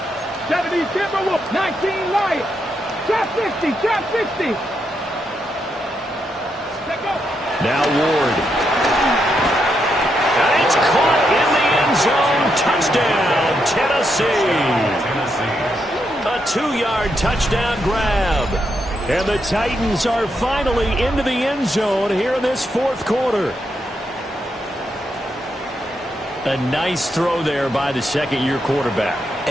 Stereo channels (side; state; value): both; normal; correlation 0.81